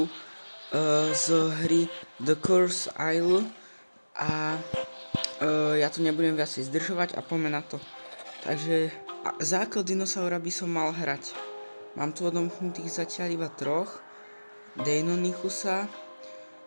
z hry The Curse Isle a ja tu nebudem viacej zdržovať a poďme na to. Takže základ dinosaura by som mal hrať. Mám tu odomknutých zatiaľ iba troch. Deinonychusa,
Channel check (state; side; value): inverted; both; correlation -1.00